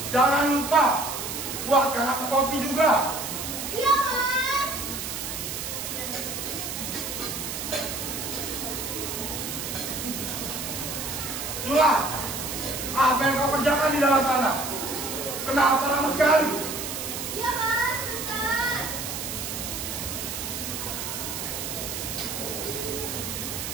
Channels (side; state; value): right; noise; hiss, 5 dB below the sound